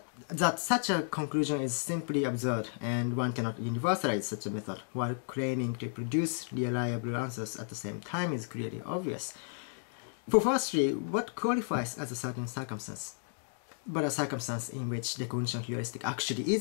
That such a conclusion is simply absurd, and one cannot universalize such a method while claiming to produce reliable answers at the same time is clearly obvious. For firstly, what qualifies as a certain circumstance, but a circumstance in which recognition heuristic actually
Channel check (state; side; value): silent; right; digital silence